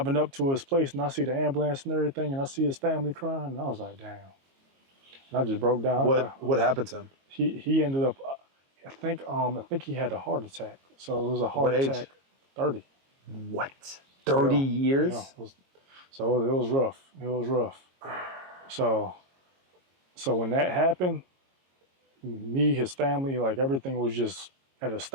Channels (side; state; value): left; late; 22 ms